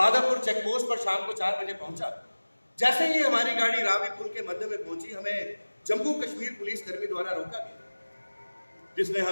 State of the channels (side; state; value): both; inverted; correlation -1.00